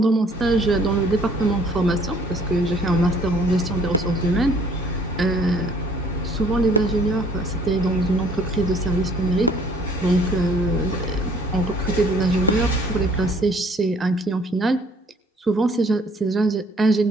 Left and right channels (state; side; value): normal; both; correlation 0.58